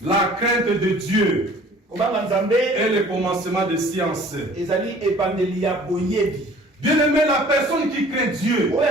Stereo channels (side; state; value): both; normal; correlation 0.50